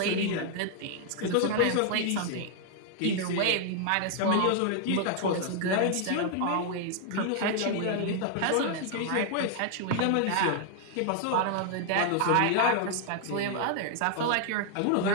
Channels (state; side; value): different; both; correlation 0.00